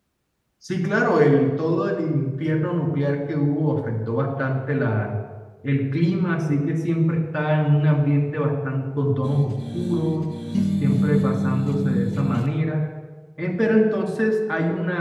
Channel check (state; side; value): identical; both; correlation 1.00